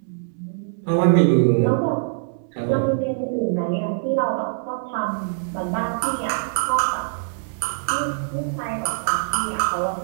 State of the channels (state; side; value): silent; left; digital silence